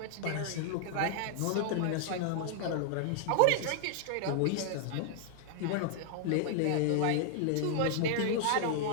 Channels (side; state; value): both; different; correlation 0.00